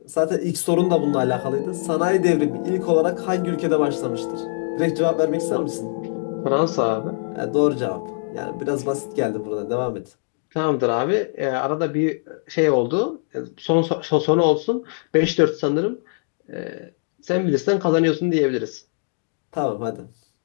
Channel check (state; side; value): silent; right; digital silence